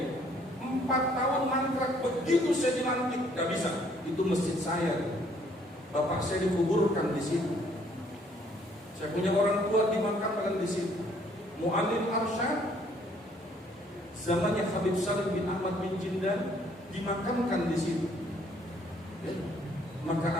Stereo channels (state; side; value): normal; both; correlation 0.63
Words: 4 tahun mangkrak. Begitu saya dilantik, nggak bisa. Itu masjid saya. Bapak saya dikuburkan di situ. Saya punya orang tua dimakamkan di situ. Muallim Arsyad zamannya Habib Salim bin Ahmad bin Jindan dimakamkan di situ. Ya.